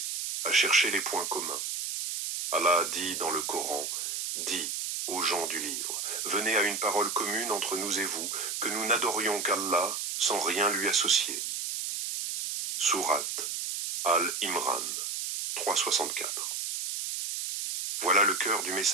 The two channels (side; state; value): right; noise; hiss, 3 dB below the sound